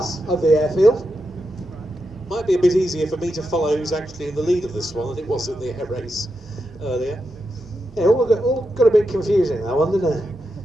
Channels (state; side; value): normal; both; correlation 0.86